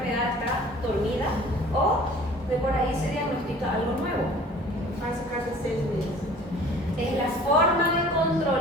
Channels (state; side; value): normal; both; correlation 0.48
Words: está dormida o de por ahí se diagnostica algo nuevo. Faz a cada 6 meses. Es la forma de